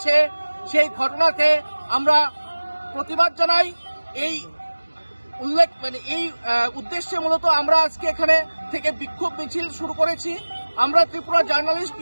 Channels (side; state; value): both; inverted; correlation -1.00